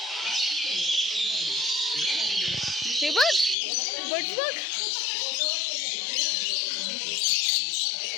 हे बघ बट बघ.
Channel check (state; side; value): drops out; right; at 3.6 s